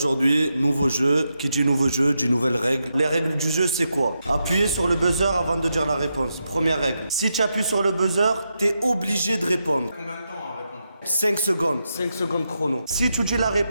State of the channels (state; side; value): inverted; both; correlation -0.85